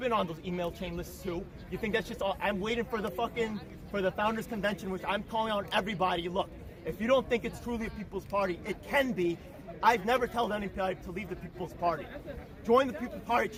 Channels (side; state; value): both; identical; correlation 1.00